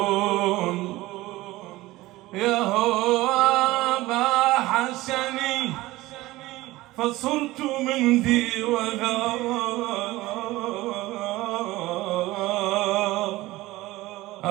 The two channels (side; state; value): left; quieter; 18.5 dB